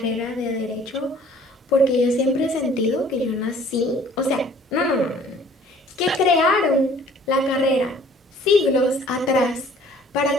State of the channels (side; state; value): both; normal; correlation 0.54